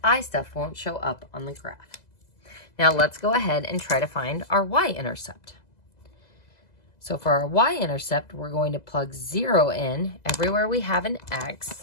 I stuff won't show up on the graph. Now let's go ahead and try to find our y-intercept. So for our y-intercept, we're going to plug 0 in everywhere we have an x.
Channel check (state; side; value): late; right; 2.0 ms